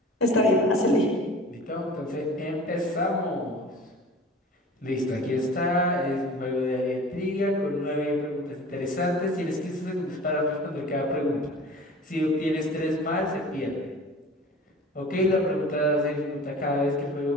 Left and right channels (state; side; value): normal; both; correlation 0.41